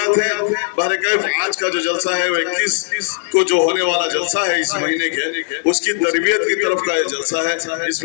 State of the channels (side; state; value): right; silent; digital silence